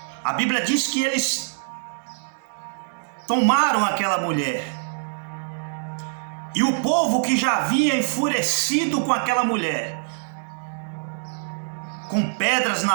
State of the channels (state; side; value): silent; left; digital silence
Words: A Bíblia diz que eles tomaram aquela mulher. E o povo que já havia enfurecido com aquela mulher, com pedras